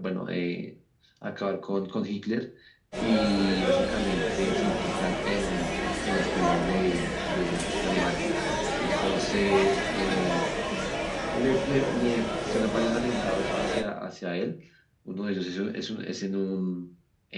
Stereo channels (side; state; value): both; identical; correlation 1.00